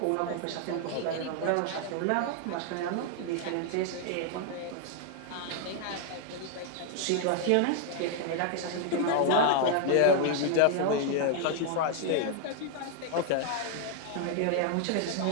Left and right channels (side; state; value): both; different; correlation 0.00